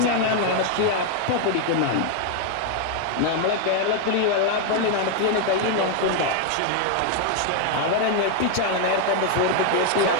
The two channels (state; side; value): different; both; correlation 0.00